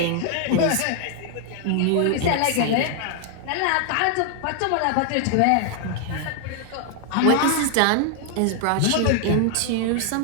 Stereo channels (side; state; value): both; different; correlation 0.00